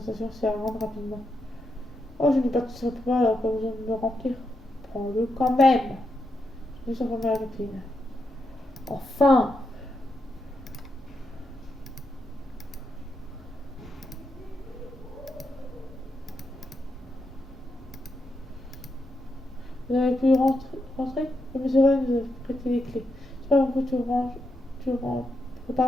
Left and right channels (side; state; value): both; normal; correlation 0.84